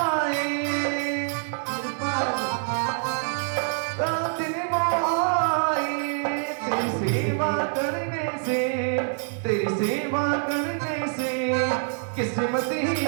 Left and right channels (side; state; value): left; silent; 61 dB below the other